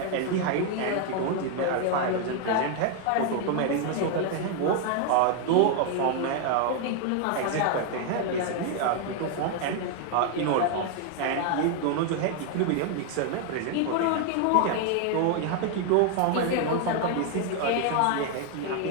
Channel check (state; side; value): different; both; correlation 0.00